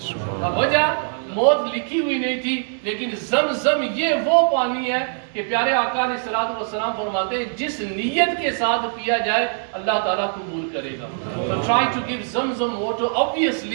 वजह मौत लिखी हुई नहीं थी, लेकिन जमजम ये वो पानी है कि प्यारे आका अलैहिस्सलातु वस्सलाम फरमाते हैं जिस नियत के साथ पिया जाए अल्लाह ताला कबूल करेगा. So try to give zamzam water.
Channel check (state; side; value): silent; left; 64 dB below the other